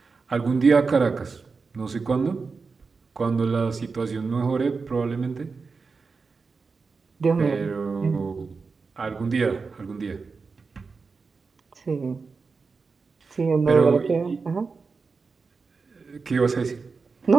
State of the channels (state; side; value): quieter; left; 4.6 dB